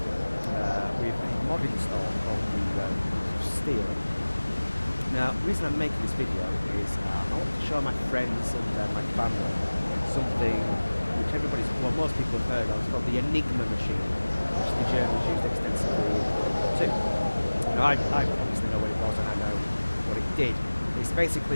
with a mod install called the Steel. Now, the reason I'm making this video is I want to show my friends and my family something which most people have heard of. It's called the Enigma machine, which the Germans used extensively in World War II. Now, I obviously know what it was and I know what it did. It's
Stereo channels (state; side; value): inverted; both; correlation -1.00